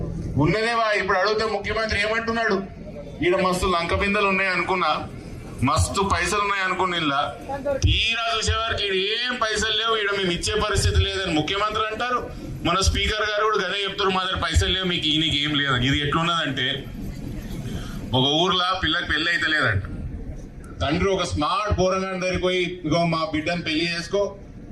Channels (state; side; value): identical; both; correlation 1.00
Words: ఇప్పుడు అడిగితే ముఖ్యమంత్రి ఏమంటున్నాడు, ఈడ మస్తు లంక బిందెలు ఉన్నాయి అనుకున్నా, మస్తు పైసలు ఉన్నాయి అనుకున్న ఇలా తీరా చూసేవారికి ఏం పైసలు లేవు, ఈడ మేము ఇచ్చే పరిస్థితి లేదని ముఖ్యమంత్రి అంటారు. మన స్పీకర్ గారు కూడా గదే చెప్తారు, మా దగ్గర పైసలు లేవు, మీకు ఈయనకి ఏం లేదు. ఇది ఎట్లున్నదంటే, ఒక ఊర్లో పిల్లకి పెళ్లి అయితే లేదంట, తండ్రి ఒక స్మార్ట్ పోరగాని దగ్గరికి పోయి, ఇగో మా బిడ్డను పెళ్లి చేసుకో,